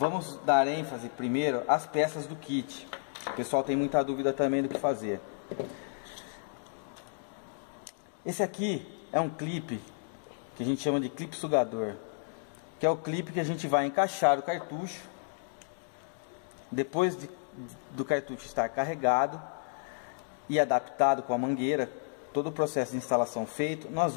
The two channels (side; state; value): right; silent; digital silence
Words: dar ênfase primeiro às peças do kit. O pessoal tem muita dúvida também do que fazer. Esse aqui é um clipe que a gente chama de clipe sugador, que é o clipe que a gente vai encaixar o cartucho. Depois do cartucho estar carregado e adaptado com a mangueira, todo o processo de instalação feito, nós